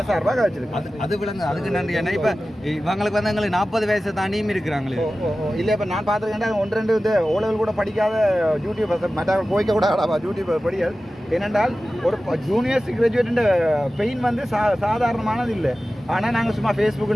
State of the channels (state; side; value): normal; both; correlation 0.95